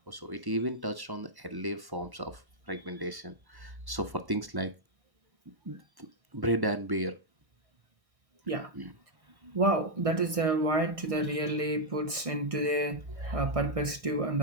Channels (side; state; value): left; late; 1.6 ms